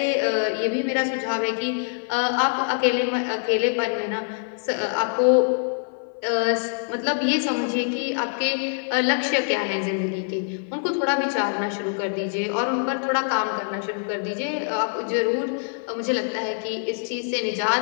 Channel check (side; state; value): right; silent; 57 dB below the other